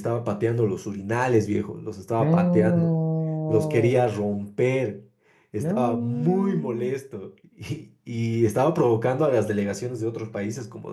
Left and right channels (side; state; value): both; identical; correlation 1.00